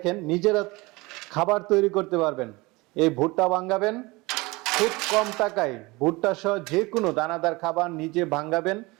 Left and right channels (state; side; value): quieter; left; 23.3 dB